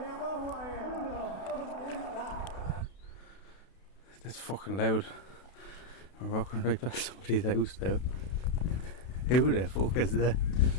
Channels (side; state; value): right; late; 32 ms